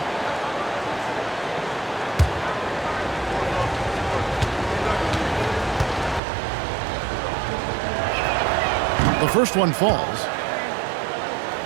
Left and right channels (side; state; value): left; drops out; at 6.2 s